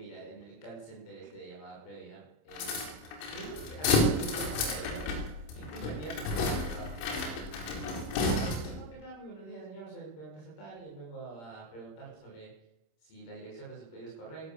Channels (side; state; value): right; late; 27 ms